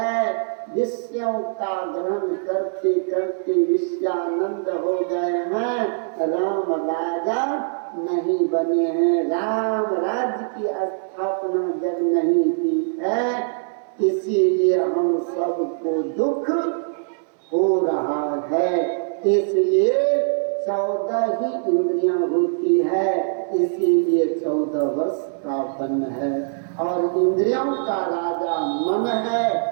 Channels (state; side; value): silent; left; digital silence